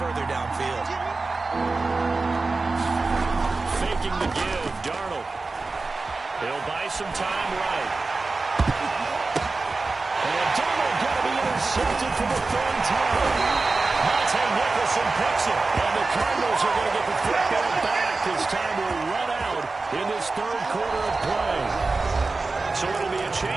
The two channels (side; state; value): left; quieter; 3.7 dB